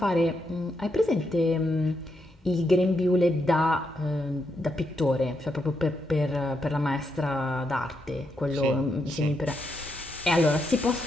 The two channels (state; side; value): normal; both; correlation 0.81